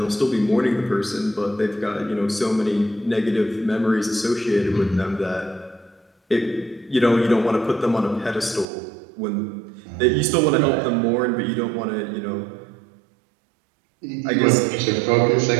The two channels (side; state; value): left; drops out; at 8.7 s